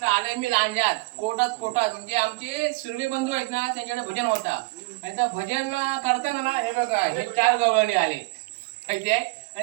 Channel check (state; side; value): quieter; left; 26.3 dB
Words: आले मी लांजात कोटात म्हणजे आमचे सुर्वे बंधू आहेत ना, त्यांच्याकडे भजन होता आणि त्या भजन करताना ना हे बघा हे 4 गवळणी आले माहिती आहे.